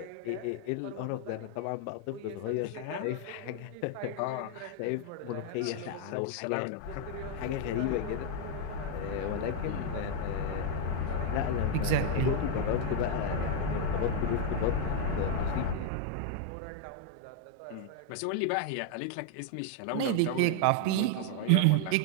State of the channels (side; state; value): both; different; correlation 0.00